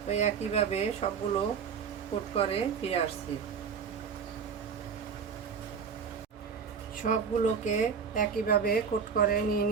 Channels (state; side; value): quieter; left; 6.4 dB